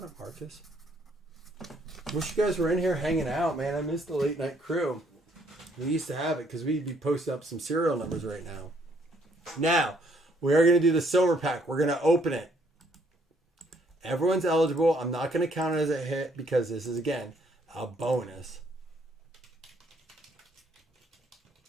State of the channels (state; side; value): normal; both; correlation 0.67